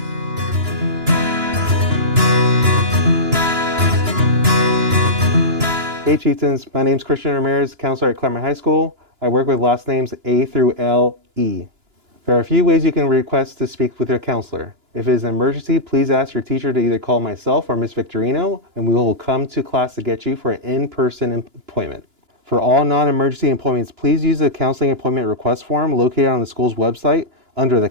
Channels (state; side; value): late; left; 2.9 ms